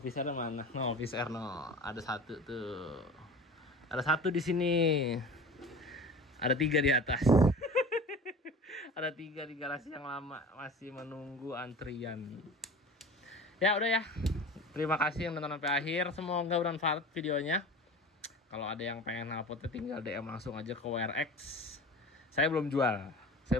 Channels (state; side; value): normal; both; correlation 0.37